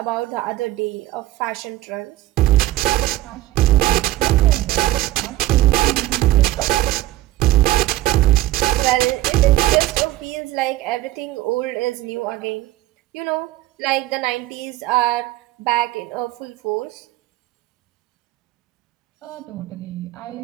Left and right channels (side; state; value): left; quieter; 16.3 dB